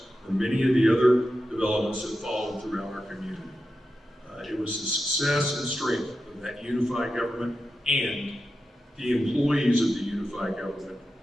or many of the other developments that followed throughout our community. It was the success and strength of that unified government and the employees of the unified government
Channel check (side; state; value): both; normal; correlation 0.91